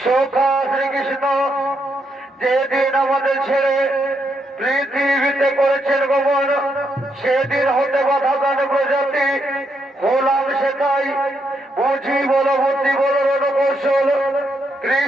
সখা শ্রীকৃষ্ণ যেদিন আমাদের ছেড়ে পৃথিবীতে করেছেন গমন সেদিন হতে বাধা দান প্রজাতি হলাম সেটাই বুঝি বল বুদ্ধি বল রণকৌশল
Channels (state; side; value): normal; both; correlation 0.79